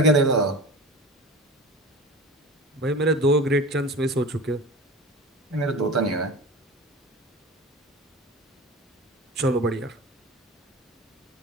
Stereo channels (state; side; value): normal; both; correlation 0.34